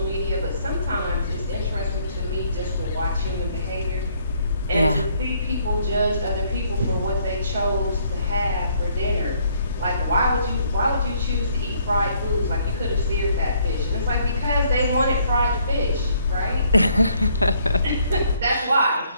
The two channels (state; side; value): inverted; both; correlation -0.66